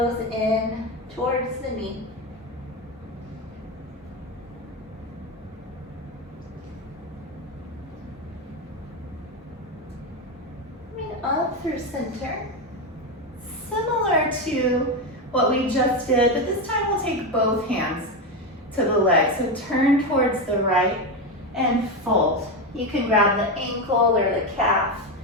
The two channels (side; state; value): both; normal; correlation 0.13